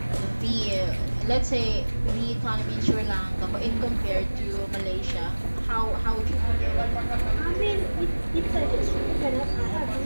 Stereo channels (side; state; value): both; inverted; correlation -1.00